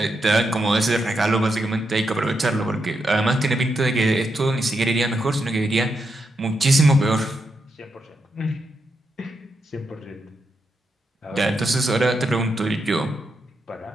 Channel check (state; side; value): normal; both; correlation 0.83